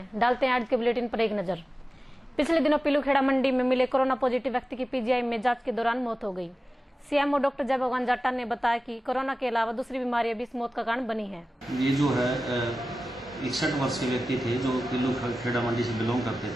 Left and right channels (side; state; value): both; normal; correlation 0.95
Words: डालते हैं आज के बुलेटिन पर एक नजर। पिछले दिनों पीलूखेड़ा मंडी में मिले कोरोना पॉजिटिव व्यक्ति की पीजीआई में जांच के दौरान मौत हो गई। सीएमओ डॉक्टर जय भगवान जाटा ने बताया कि कोरोना के अलावा दूसरी बीमारियां भी इस मौत का कारण बनी है। ये जो है 61 वर्ष के व्यक्ति थे जो पीलूखेड़ा मंडी से बिलोंग करते